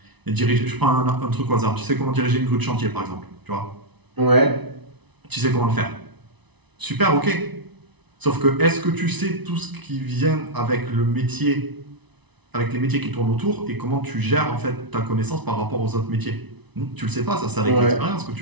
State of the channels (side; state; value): left; late; 0.99 ms